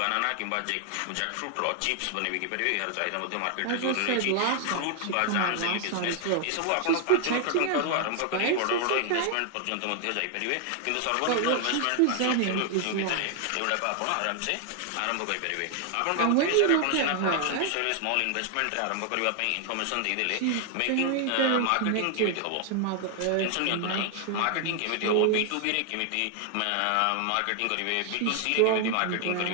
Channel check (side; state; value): both; different; correlation 0.00